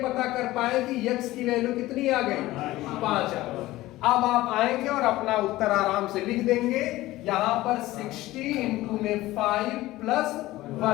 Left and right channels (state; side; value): quieter; right; 17.2 dB